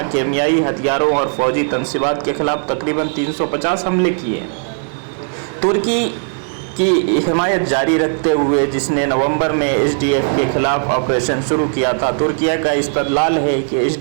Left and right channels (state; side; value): silent; left; 60 dB below the other